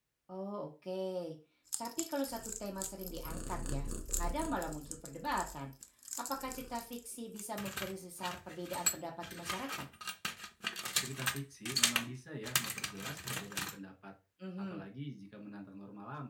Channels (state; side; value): identical; both; correlation 1.00